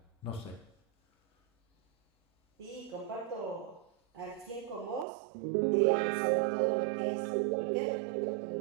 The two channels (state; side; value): drops out; left; at 5.1 s